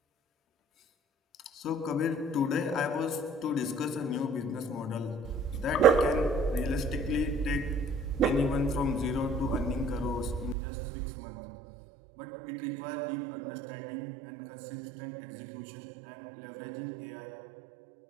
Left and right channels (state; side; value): drops out; left; at 10.6 s